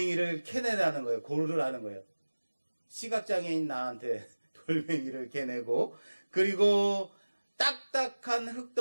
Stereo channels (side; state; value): both; inverted; correlation -1.00